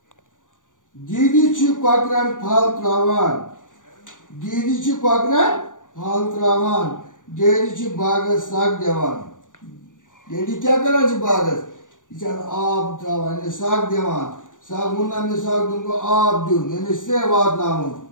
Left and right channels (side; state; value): right; late; 0.87 ms